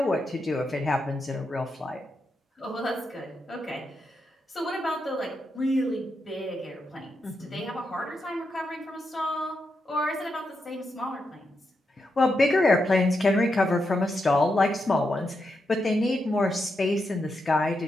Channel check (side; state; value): both; normal; correlation 0.84